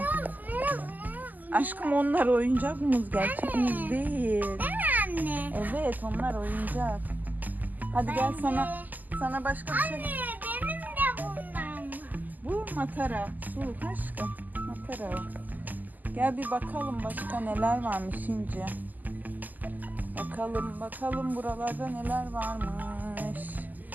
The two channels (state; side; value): late; left; 0.083 ms